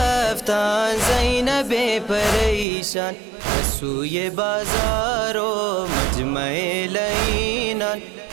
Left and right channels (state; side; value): drops out; left; at 2.7 s